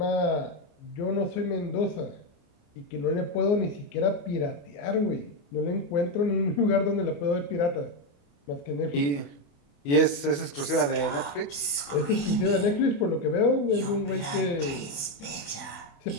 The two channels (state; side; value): late; right; 28 ms